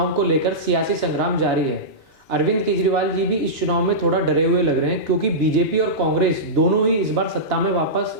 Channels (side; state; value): both; normal; correlation -0.15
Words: को लेकर सियासी संग्राम जारी है। अरविंद केजरीवाल जी भी इस चुनाव में थोड़ा डरे हुए लग रहे हैं, क्योंकि बीजेपी और कांग्रेस दोनों ही इस बार सत्ता में वापस